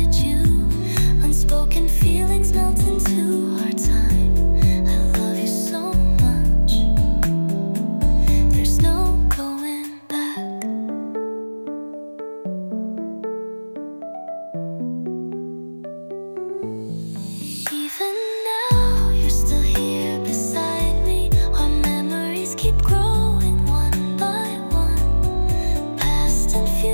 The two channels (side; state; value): both; inverted; correlation -1.00